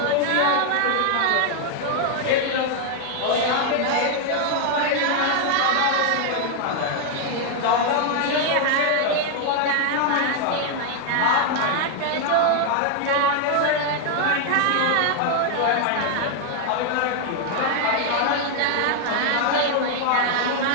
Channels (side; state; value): both; different; correlation 0.00